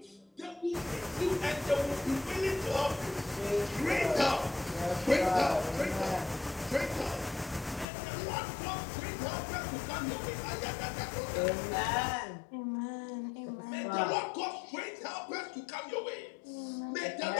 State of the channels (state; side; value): drops out; right; at 7.9 s